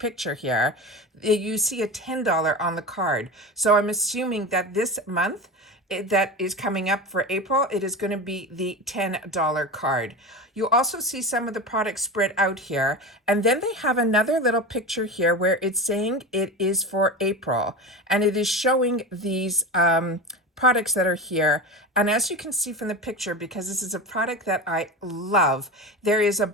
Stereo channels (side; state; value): both; normal; correlation 0.26